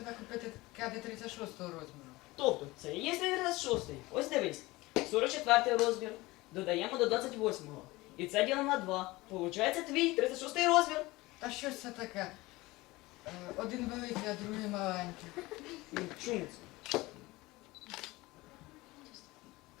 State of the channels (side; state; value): right; quieter; 20.7 dB